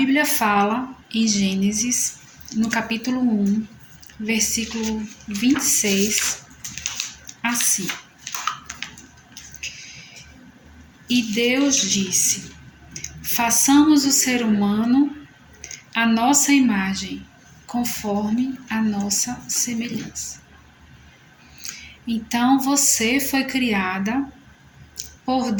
fala em Gênesis, no capítulo 1, versículo 26, assim: E Deus disse: façamos o ser humano à nossa imagem, conforme a nossa semelhança. Então você foi criada por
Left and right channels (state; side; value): identical; both; correlation 1.00